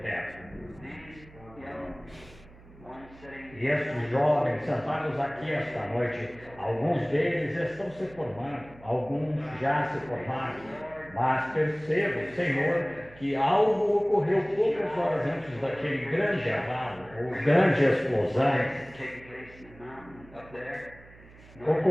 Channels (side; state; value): right; noise; hum, 22 dB below the sound